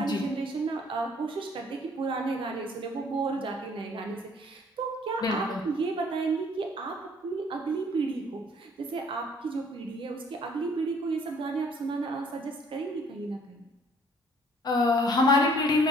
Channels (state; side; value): normal; both; correlation 0.58